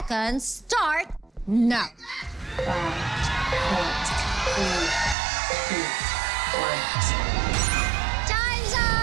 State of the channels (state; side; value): drops out; left; at 5.2 s